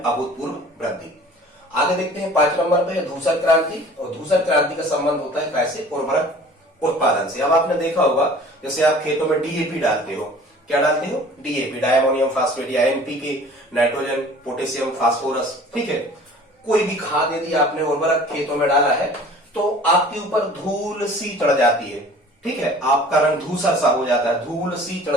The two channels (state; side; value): normal; both; correlation 0.47